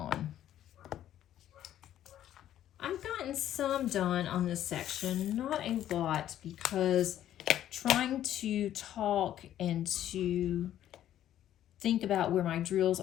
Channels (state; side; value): quieter; right; 11.8 dB